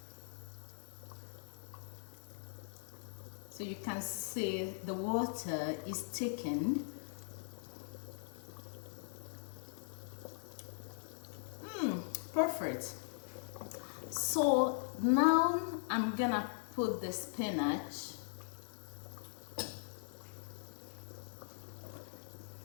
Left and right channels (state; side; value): silent; right; digital silence